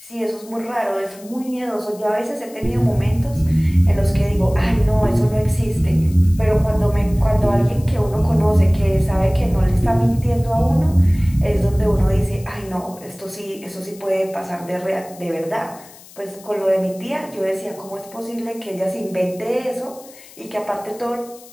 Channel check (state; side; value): noise; left; hiss, 21 dB below the sound